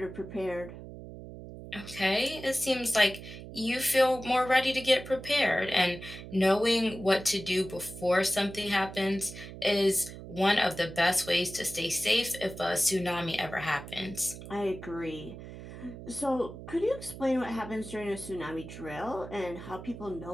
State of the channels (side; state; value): right; noise; hum, 13 dB below the sound